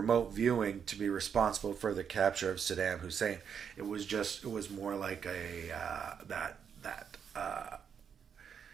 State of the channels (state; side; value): quieter; left; 7.3 dB